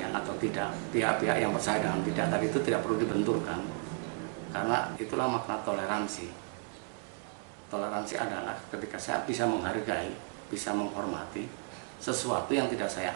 atau tidak. Pihak-pihak yang percaya dengan tidak tadi itu tidak perlu dibenturkan, karena itulah makna toleransi. Toleransi adalah ketika saya bisa menghargai, bisa menghormati sesuatu yang tidak saya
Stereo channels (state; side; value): quieter; left; 39.3 dB